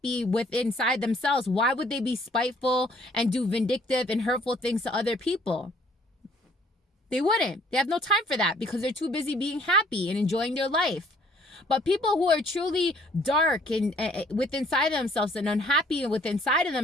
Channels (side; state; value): both; normal; correlation 0.60